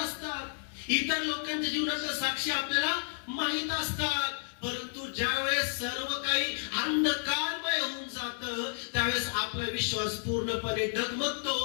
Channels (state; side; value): silent; right; digital silence